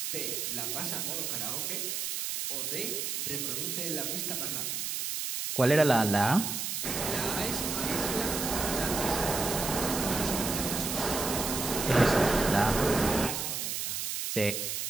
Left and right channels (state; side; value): noise; right; hiss, 2 dB below the sound